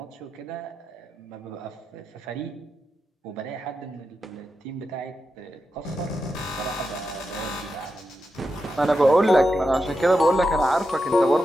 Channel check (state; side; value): normal; both; correlation 0.88